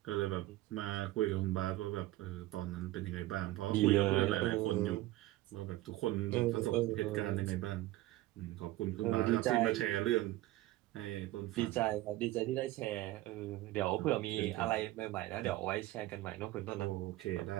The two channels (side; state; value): left; quieter; 16.8 dB